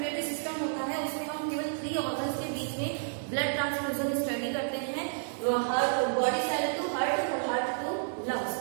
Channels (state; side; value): silent; left; digital silence